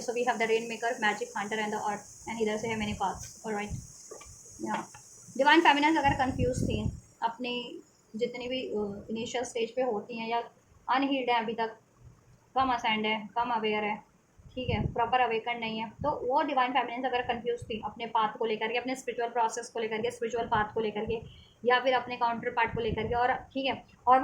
So we have the rain maker, magic, hunter and the earth, and इधर से है मेनी पाथ्स. ऑलराइट. या डिवाइन फेमिनिन्स अगर कंफ्यूज थी अपनी जितनी भी इनिशियल स्टेज पे होती हैं या अनहील्ड है अभी तक, कम असेंड है, कम अवेयर है, ठीक है, प्रॉपर अवेकन नहीं है, तो वो डिवाइन फेमिनिन्स अगर कंफ्यूज थी अपने पाथ को लेकर के, अपने स्पिरिचुअल प्रोसेस को लेकर के, स्पिरिचुअल पाथ को लेकर के, या फिर अपने काउंटर पार्ट को लेकर के, और ठीक है, और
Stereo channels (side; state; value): both; identical; correlation 1.00